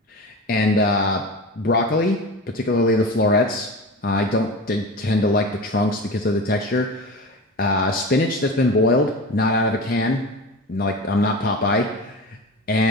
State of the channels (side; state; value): both; normal; correlation 0.30